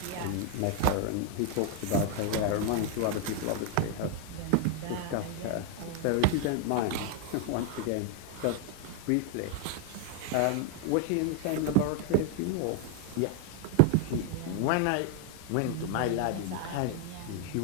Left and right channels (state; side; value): different; both; correlation 0.01